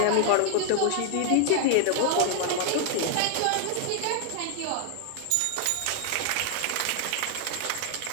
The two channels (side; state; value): both; different; correlation 0.00